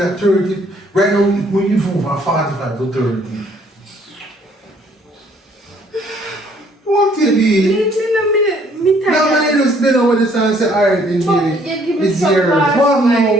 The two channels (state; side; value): normal; both; correlation 0.63